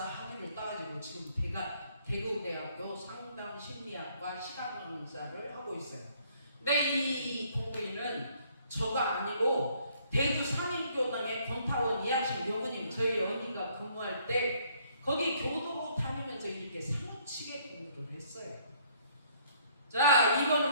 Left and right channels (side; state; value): both; inverted; correlation -0.64